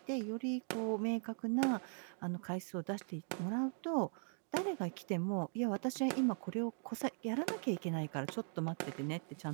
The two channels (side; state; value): left; silent; 51 dB below the other